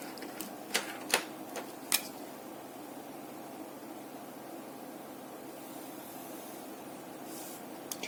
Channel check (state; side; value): identical; both; correlation 1.00